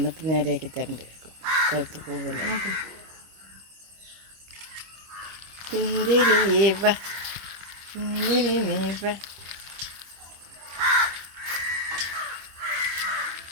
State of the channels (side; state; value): left; late; 25 ms